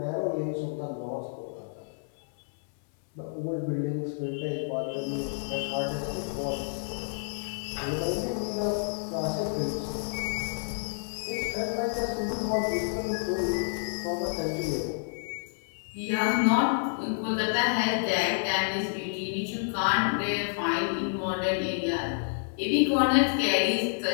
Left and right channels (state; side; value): silent; right; 58 dB below the other